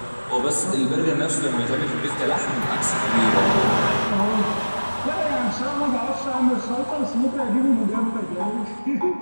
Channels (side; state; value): both; inverted; correlation -1.00